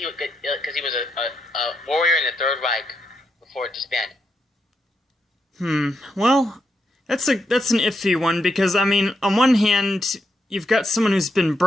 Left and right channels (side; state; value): both; normal; correlation 0.81